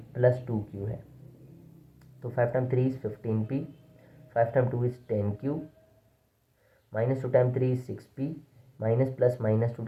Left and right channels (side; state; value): both; identical; correlation 1.00